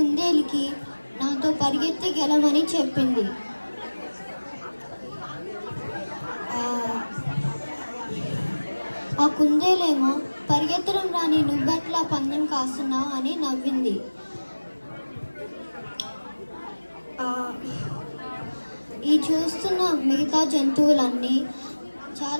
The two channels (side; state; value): both; inverted; correlation -1.00